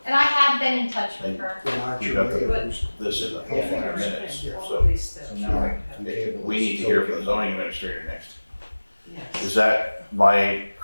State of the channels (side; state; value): both; inverted; correlation -1.00